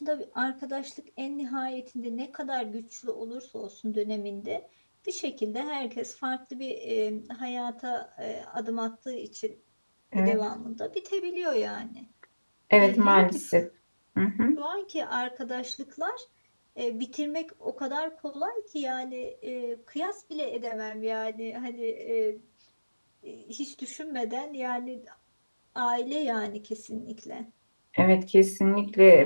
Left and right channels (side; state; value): both; inverted; correlation -1.00